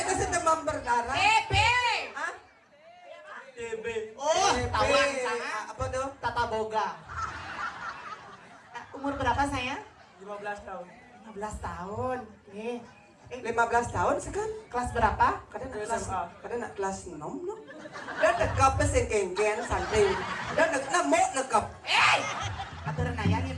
sih demam berdarah. TB. Hah? TB. Oh, tawan sana. Apa tuh? Tata Boga. Umur berapa sayang? 15 tahun. 15 tahun. Nih. 15 tahun sekan? Kelas berapa? Kadang nak kelas 6 no. Dan nekap sing kengken santai. Dan nak nekap. Aturan ayahnya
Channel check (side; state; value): both; identical; correlation 1.00